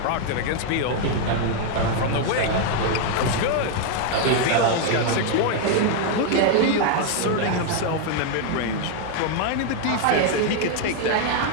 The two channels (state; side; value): different; both; correlation 0.00